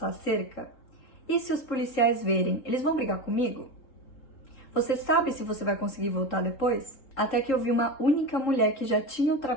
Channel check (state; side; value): late; right; 3.8 ms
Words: a cerca? E se os policiais verem, eles vão brigar comigo? Você sabe se você vai conseguir voltar depois? Até que eu vi uma única mulher que já tinha